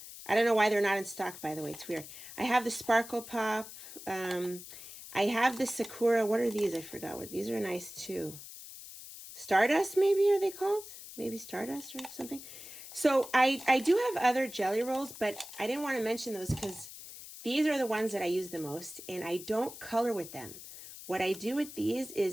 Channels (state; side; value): noise; left; hiss, 14 dB below the sound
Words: I don't know why they're not in stock, by the way. It's weird. I have the Sparkle Pop. I have the Sakura. What are these? I forgot what. These are nice, too. Stardust, maybe, are they called? Maybe Stardust or something. So I do have other jelly rolls, but I didn't want to mention those because these are the ones that I use the most, and I don't color with them. what I do with these